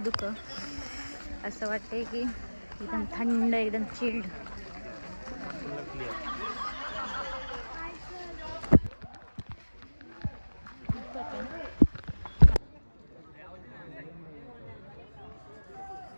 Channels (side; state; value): both; inverted; correlation -1.00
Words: असं वाटतंय की एकदम थंड, एकदम चिल्ड.